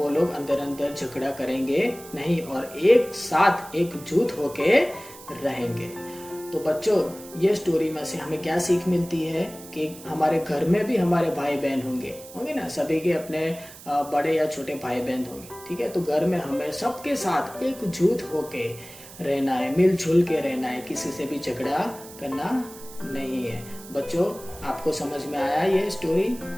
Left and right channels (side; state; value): right; noise; hiss, 17 dB below the sound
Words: लोग अंदर अंदर झगड़ा करेंगे नहीं और एक साथ एकजुट होके रहेंगे। तो बच्चों, ये स्टोरी में से हमें क्या सीख मिलती है कि हमारे घर में भी हमारे भाई बहन होंगे ना, सभी के अपने बड़े या छोटे भाई बहन होंगे, ठीक है। तो घर में हमें सबके साथ एकजुट होके रहना है, मिलजुल के रहना है, किसी से भी झगड़ा करना नहीं है। बच्चों, आपको समझ में आया ये story?